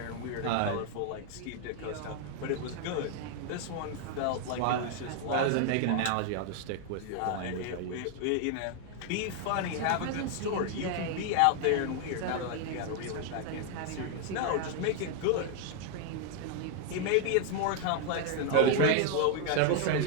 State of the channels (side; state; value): both; different; correlation 0.00